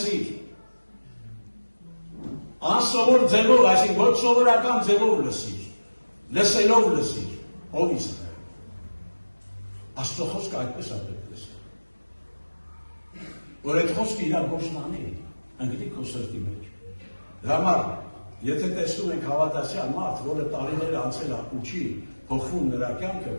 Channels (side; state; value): both; inverted; correlation -1.00